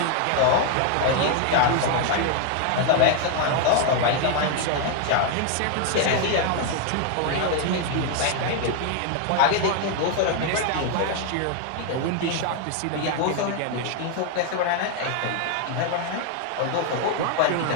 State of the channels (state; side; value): different; both; correlation 0.00